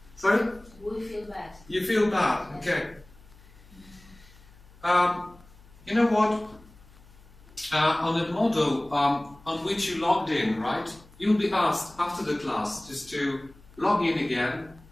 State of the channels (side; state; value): left; noise; hum, 25 dB below the sound